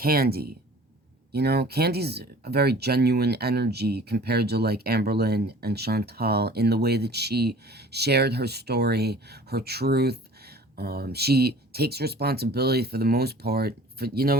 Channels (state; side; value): normal; both; correlation 0.47